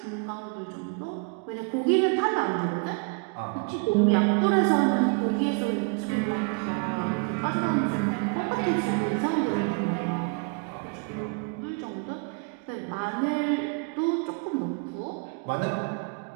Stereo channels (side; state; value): left; quieter; 34.2 dB